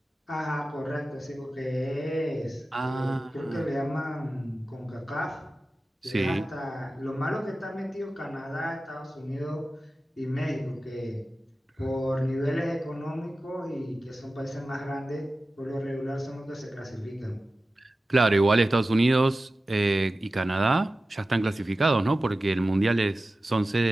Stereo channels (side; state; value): both; normal; correlation 0.95